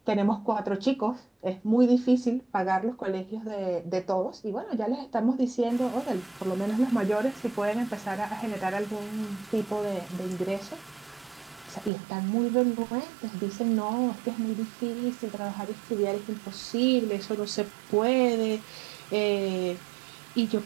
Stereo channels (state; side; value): drops out; left; at 11.9 s